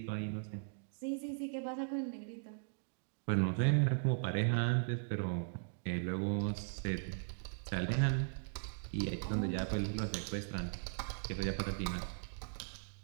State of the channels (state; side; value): silent; left; digital silence